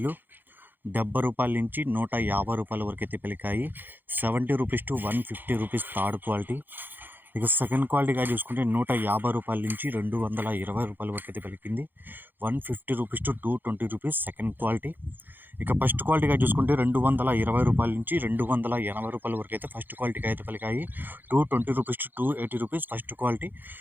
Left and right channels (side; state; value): left; late; 0.092 ms